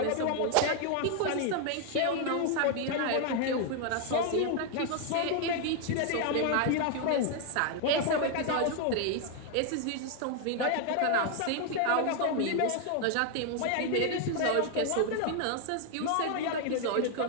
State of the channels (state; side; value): different; both; correlation 0.00